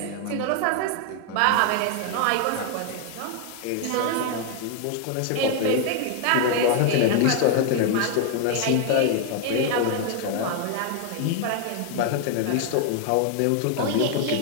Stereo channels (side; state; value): both; different; correlation 0.00